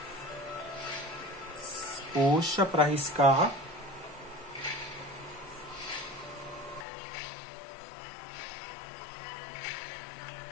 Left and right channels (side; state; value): right; drops out; at 6.9 s